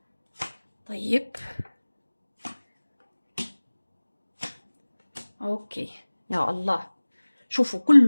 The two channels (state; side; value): inverted; both; correlation -1.00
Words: طيب أوكي يا الله، شوفوا